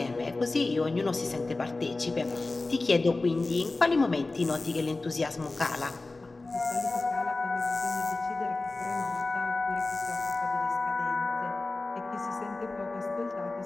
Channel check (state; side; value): quieter; right; 3.3 dB